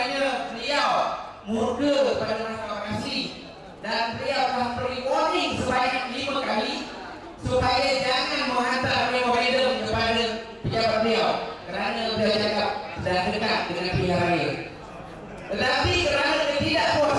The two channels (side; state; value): both; identical; correlation 1.00